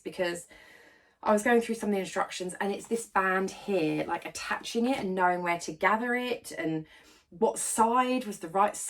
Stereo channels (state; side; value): identical; both; correlation 1.00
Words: because I was going through some of the instructions and it's this band here, like attaching it and knowing where to gather it and what side was the right